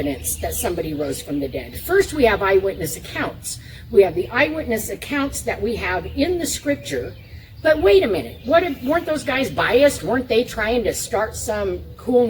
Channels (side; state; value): both; identical; correlation 1.00